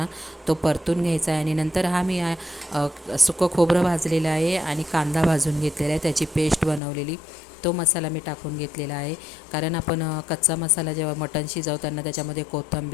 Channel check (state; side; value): drops out; right; at 6.8 s